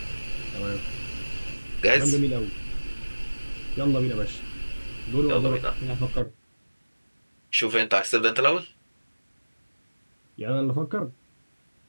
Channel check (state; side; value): inverted; both; correlation -1.00